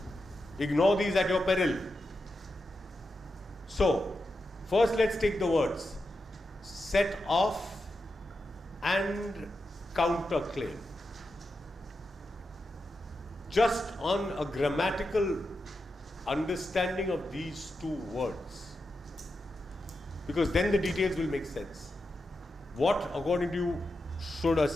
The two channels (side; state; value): both; normal; correlation 0.88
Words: Ignore these at your peril. So, first let's take the words set off and counterclaim. Just on a grammatical understanding of these 2 words, because then the details will make sense. What, according to you, should a